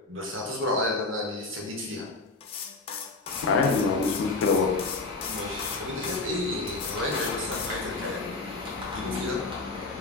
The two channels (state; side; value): quieter; right; 3.5 dB